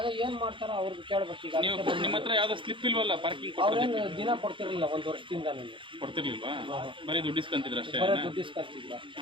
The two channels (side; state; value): left; late; 0.25 ms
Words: ಏನು ಮಾಡ್ತಾರೋ ಅವ್ರಿಗೆ ಕೇಳ್ಬೇಕು. ಈಗ ನಿಮ್ಮ ಹತ್ರ ಯಾವ್ದೋ ಸ್ಲಿಪ್ ಇಲ್ವಲ್ಲ ಪಾರ್ಕಿಂಗ್? ಅವ್ರೇನು ದಿನ ಕೊಡ್ತಿರ್ಲಿಲ್ಲ, 1 ವರ್ಷದಿಂದ ನನಗೆ ಕೊಡ್ತಿರ್ಲಿಲ್ವಾ? ಬರೀ ದುಡ್ಡು ಇಸ್ಕೊಂತಿದ್ರು ಅಷ್ಟೇ? ದುಡ್ಡು ಇಸ್ಕೊಂತಿದ್ರು.